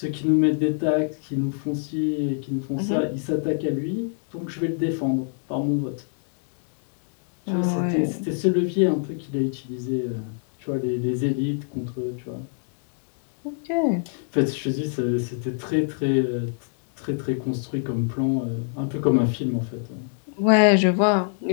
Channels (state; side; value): silent; right; digital silence